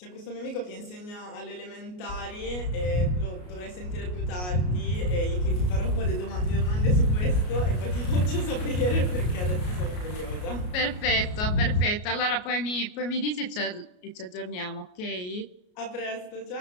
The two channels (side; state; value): right; late; 33 ms